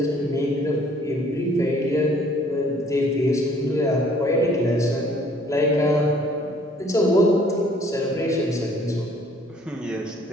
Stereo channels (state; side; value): normal; both; correlation 0.58